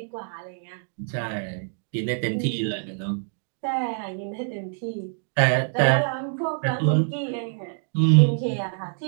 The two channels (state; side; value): silent; left; digital silence